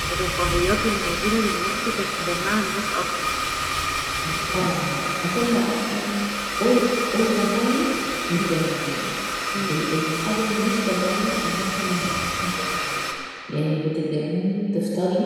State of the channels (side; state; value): both; identical; correlation 1.00